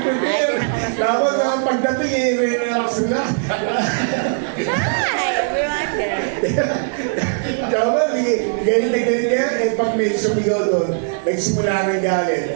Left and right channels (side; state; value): left; silent; digital silence